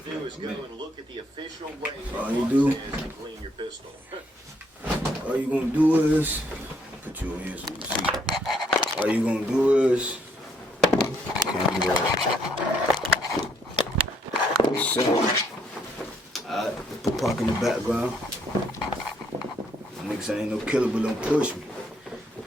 like a minute. All you do, all you gonna do is put you in here so you can see. All you gonna do is alright, park in the background. Niggas ain't no killer, but don't push me.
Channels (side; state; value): both; normal; correlation 0.70